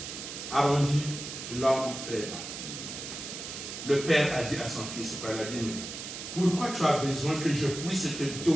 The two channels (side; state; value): right; noise; hiss, 8 dB below the sound